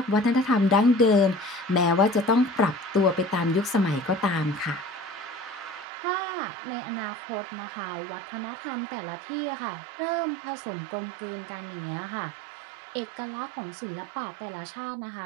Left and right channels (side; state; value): left; drops out; at 5.9 s